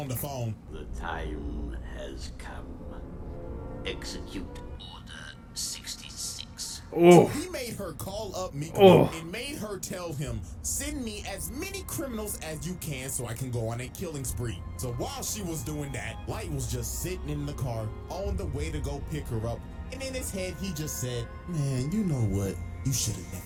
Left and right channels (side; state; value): both; identical; correlation 1.00